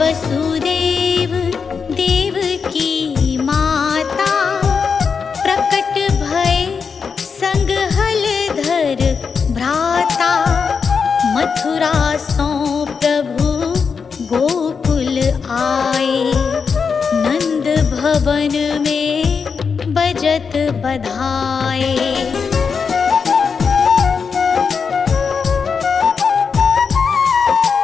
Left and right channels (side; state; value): right; quieter; 5.7 dB